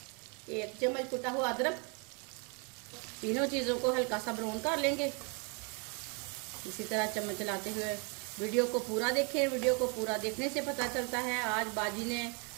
1 चम्मच कुटा हुआ अदरक। तीनों चीज़ों को हल्का सा ब्राउन कर लेंगे। इसी तरह चम्मच चलाते हुए वीडियो को पूरा देखें। वीडियो को पूरा देखने से पता चलता है आज बाजी ने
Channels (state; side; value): quieter; left; 35.2 dB